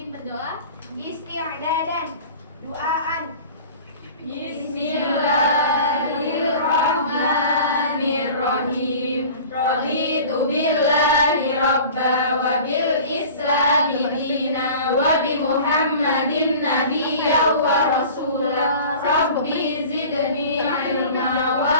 berdoa. Isti'dadan, duaan. Bismillahirrahmanirrahim. Raditu billahi rabba wa bil islami dina wa bi Muhammadin nabiyya wa rasulah. Rabbi zidni ilma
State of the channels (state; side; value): inverted; both; correlation -0.41